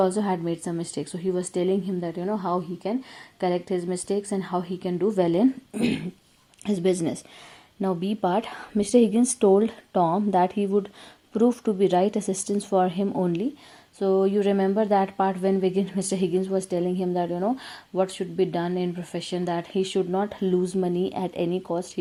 had made some mistakes. So he was telling him that how he can correct his mistakes and how he can do well in his business. Now B part. Mr. Higgins told Tom that he would prove to be right assistance for him only. So you remember that part when Mr. Higgins was telling him that what should be done in profession, that he should not lose money at any cost,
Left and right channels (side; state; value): both; identical; correlation 1.00